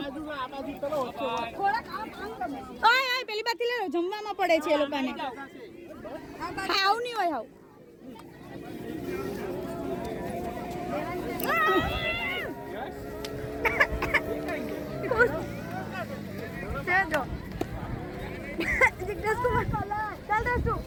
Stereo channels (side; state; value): both; identical; correlation 1.00